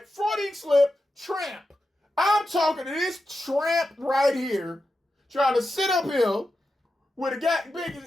Freudian slip, tramp. I'm talking to this tramp right here trying to sit up here with a goddamn,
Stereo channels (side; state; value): both; normal; correlation 0.90